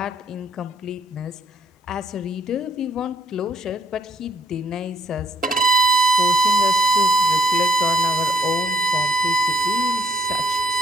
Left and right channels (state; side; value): normal; both; correlation 0.66